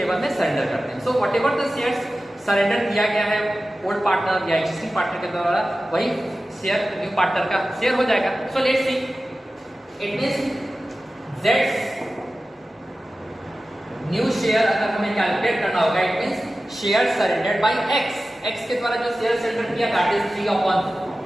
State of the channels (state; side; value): normal; both; correlation 0.95